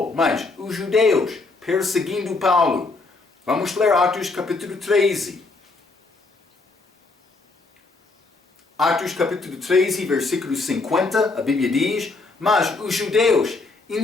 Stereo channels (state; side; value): quieter; right; 3.7 dB